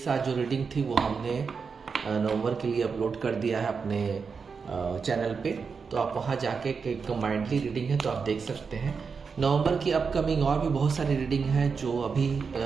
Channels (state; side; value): quieter; left; 5.4 dB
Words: जो रीडिंग थी वो हमने नवंबर के लिए अपलोड कर दिया है अपने चैनल पे। तो आप वहाँ जाके कंबाइंडली रीडिंग है तो आप देख सकते हैं। नवंबर की अपकमिंग और भी बहुत सारी रीडिंग है जो अभी